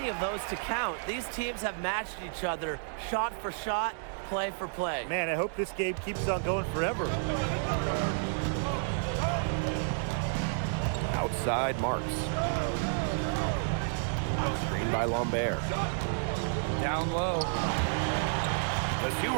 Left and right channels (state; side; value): silent; left; digital silence